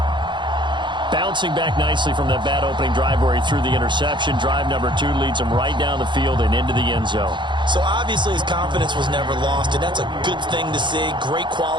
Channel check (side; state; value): left; late; 0.23 ms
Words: Bouncing back nicely from that bad opening drive where he threw the interception. Drive number 2 leads him right down the field and into the end zone. So obviously his confidence was never lost, and that's a good thing to see. Great